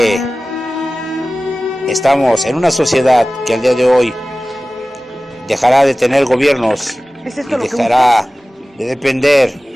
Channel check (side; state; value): both; normal; correlation 0.96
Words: estamos en una sociedad que al día de hoy dejará de tener gobiernos y dejará de